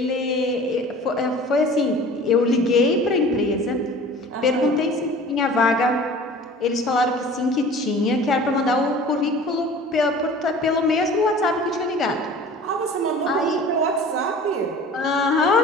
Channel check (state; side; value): normal; both; correlation 0.44